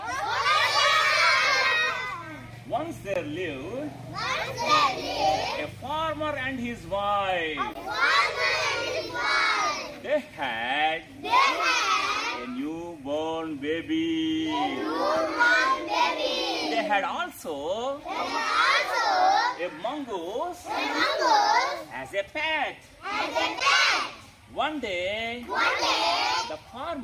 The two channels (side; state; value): both; identical; correlation 1.00